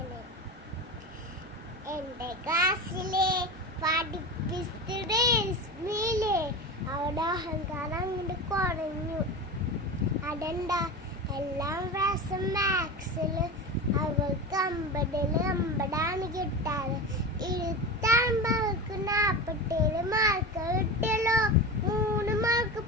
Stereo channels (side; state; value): both; normal; correlation 0.26